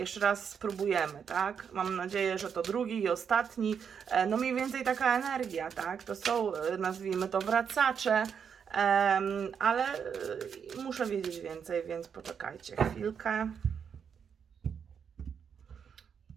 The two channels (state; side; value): quieter; left; 7.1 dB